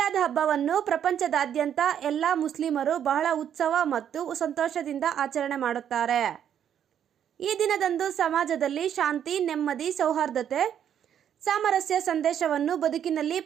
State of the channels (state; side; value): quieter; left; 9.3 dB